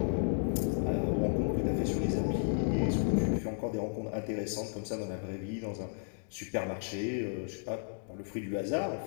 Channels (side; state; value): right; silent; digital silence